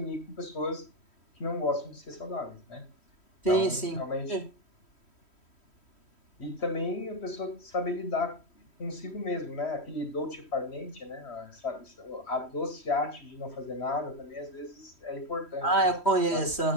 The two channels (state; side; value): late; right; 3.1 ms